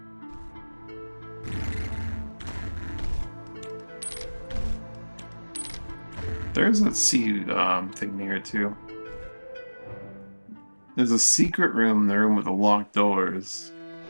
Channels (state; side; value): inverted; both; correlation -1.00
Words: There's a seed thing here too. There's a secret room in the room with the locked doors.